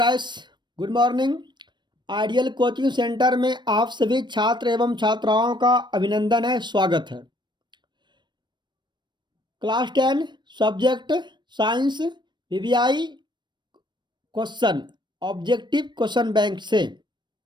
good morning. Ideal coaching centre में आप सभी छात्र एवं छात्राओं का अभिनंदन है, स्वागत है। Class 10 subject science VVI question objective question bank से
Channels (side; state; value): left; late; 0.22 ms